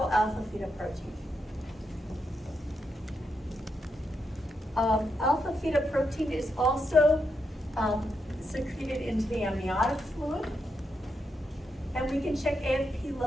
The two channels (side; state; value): both; normal; correlation 0.83